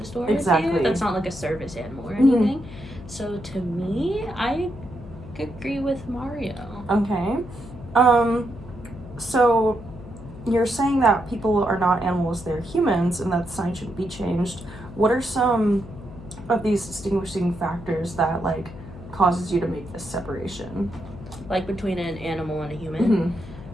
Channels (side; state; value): left; noise; hum, 15 dB below the sound